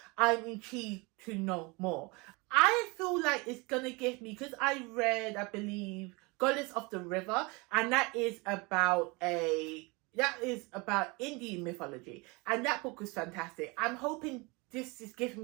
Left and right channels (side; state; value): left; quieter; 26.8 dB